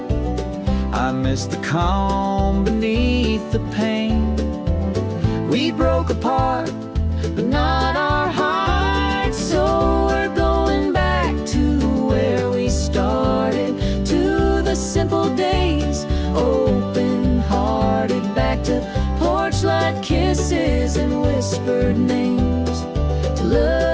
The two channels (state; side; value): identical; both; correlation 1.00